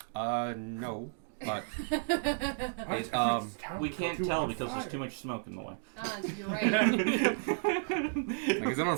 No, but We can't tell because there's too much smoke in the way. You're right. like, is it on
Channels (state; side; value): silent; left; digital silence